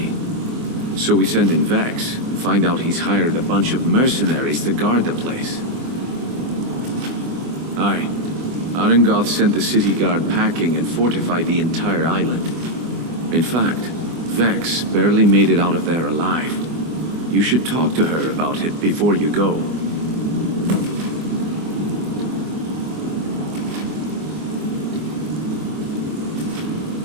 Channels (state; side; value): late; left; 24 ms